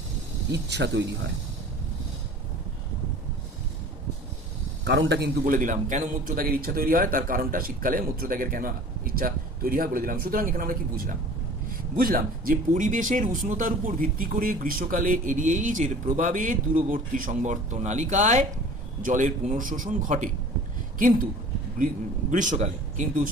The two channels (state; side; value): normal; both; correlation 0.45